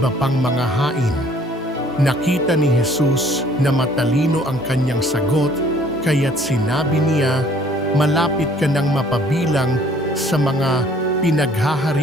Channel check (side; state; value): both; normal; correlation 0.57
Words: pang mga hain." Nakita ni Jesus na matalino ang kanyang sagot, kaya't sinabi niya, "Malapit ka nang mapabilang sa mga